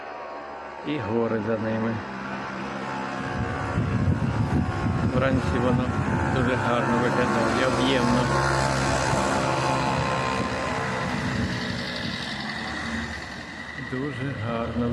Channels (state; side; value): identical; both; correlation 1.00